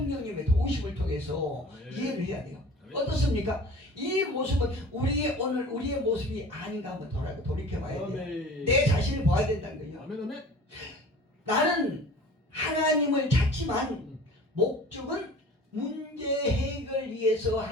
도우심을 통해서 이해를 해야 돼요. 어떻습니까? 이 모습은 우리의 모습이 아닌가 한번 돌이켜봐야 돼요. 내 자신을 봐야 된다는 거예요. 나는 하나님을 찾지만 목적은 문제 해결 위해서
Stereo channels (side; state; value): both; normal; correlation 0.43